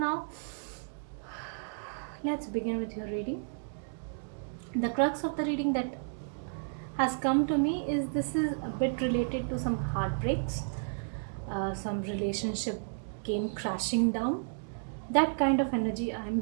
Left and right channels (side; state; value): left; silent; digital silence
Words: let's begin with your reading. The crux of the reading that has come to me is this is a bit related to some heartbreaks, some relationship came crashing down, that kind of energy I am